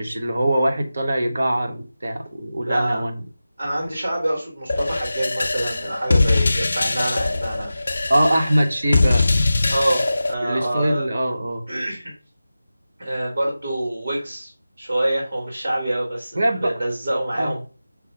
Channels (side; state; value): both; inverted; correlation -0.94